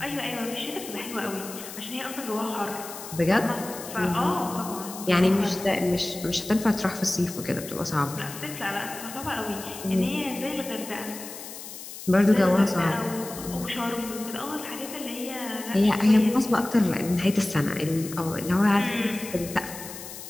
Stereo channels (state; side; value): noise; left; hiss, 12 dB below the sound